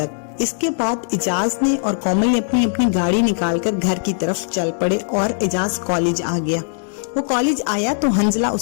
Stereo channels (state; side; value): silent; right; digital silence